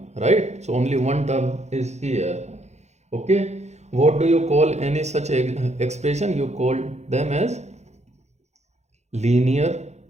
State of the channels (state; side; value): late; left; 0.33 ms